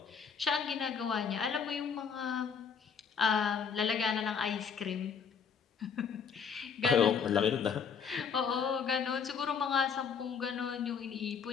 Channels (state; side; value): quieter; right; 6.6 dB